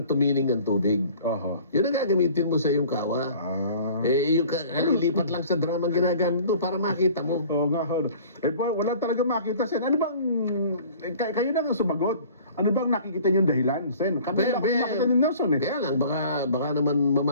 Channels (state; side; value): inverted; both; correlation -0.48